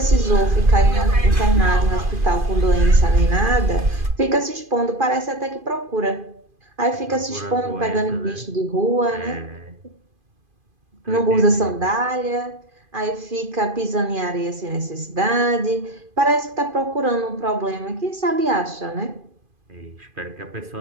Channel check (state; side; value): late; left; 2.5 ms